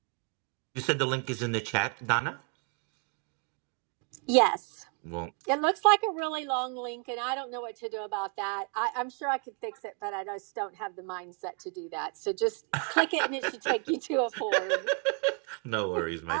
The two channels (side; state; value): left; quieter; 37.2 dB